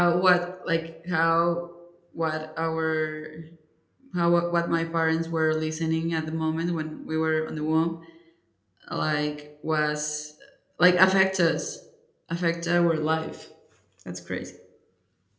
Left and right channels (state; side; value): identical; both; correlation 1.00